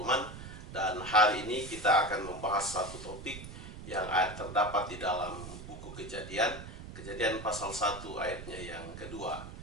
Dan hari ini kita akan membahas satu topik yang terdapat di dalam buku Kejadian, Kejadian pasal 1 ayatnya yang kedua,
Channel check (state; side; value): noise; right; rumble, 11 dB below the sound